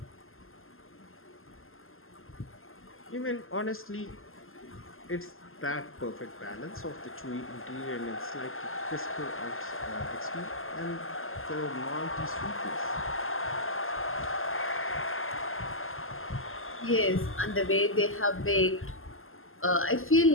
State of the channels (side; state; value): right; late; 0.61 ms